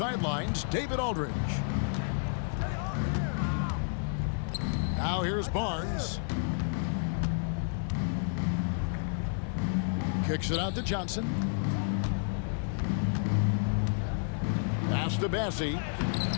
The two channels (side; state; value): right; silent; 57 dB below the other